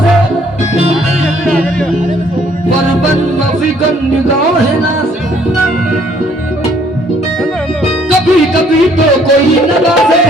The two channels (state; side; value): normal; both; correlation 0.62